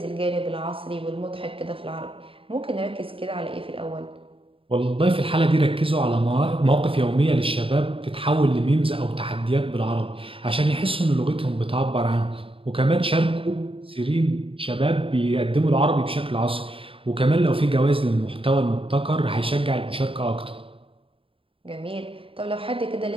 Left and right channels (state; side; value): late; left; 0.26 ms